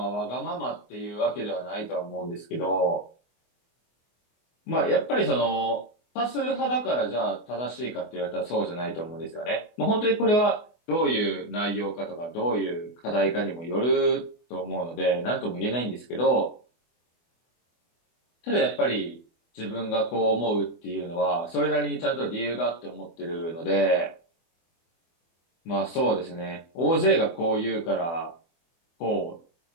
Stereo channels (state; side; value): late; right; 24 ms